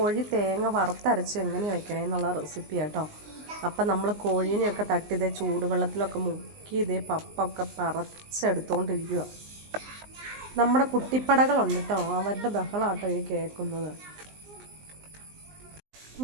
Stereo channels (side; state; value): left; late; 19 ms